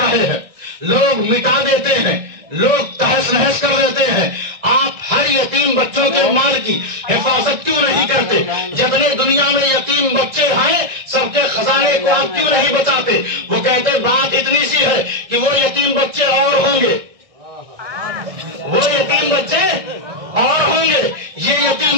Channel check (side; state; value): left; late; 1.6 ms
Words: رہے ہیں، لوگ مٹا دیتے ہیں، لوگ تہس نہس کر دیتے ہیں. آپ ہر یتیم بچوں کے مال کی حفاظت کیوں نہیں کرتے؟ جتنے دنیا میں یتیم بچے ہیں سب کے خزانے کو آپ کیوں نہیں بچاتے؟ وہ کہتے بات اتنی سی ہے کہ وہ یتیم بچے اور ہوں گے، وہ یتیم بچے اور ہوں گے، یہ یتیم